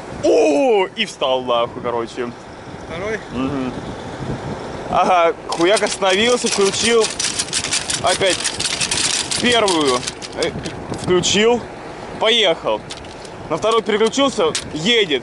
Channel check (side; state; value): both; identical; correlation 1.00